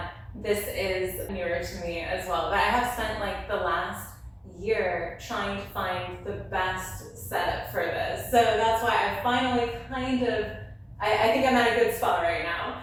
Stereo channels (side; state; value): both; identical; correlation 1.00